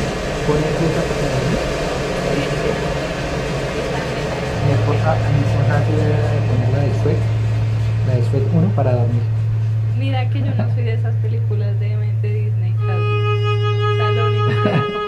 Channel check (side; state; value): both; identical; correlation 1.00